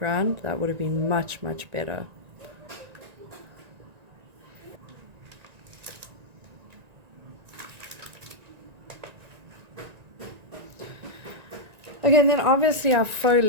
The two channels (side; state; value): left; late; 1.9 ms